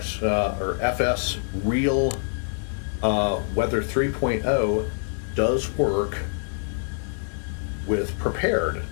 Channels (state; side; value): silent; right; digital silence